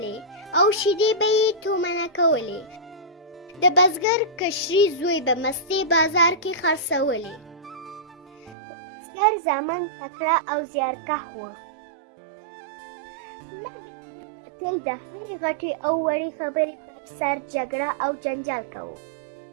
او شیدې به یې تومنه کولې. د بزګر کشري زوی به مستې بازار کې خرڅولې. د بزګر زامن تکړه او زیارکښ وو، مګر دوی به تل د هرې غټې او وړې خبرې پر سر جګړه او جنجال کوو.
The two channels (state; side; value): drops out; left; at 8.6 s